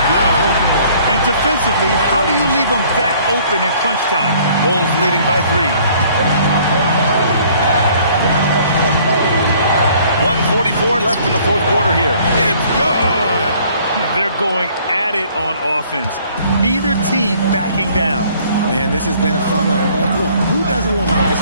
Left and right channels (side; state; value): both; inverted; correlation -0.58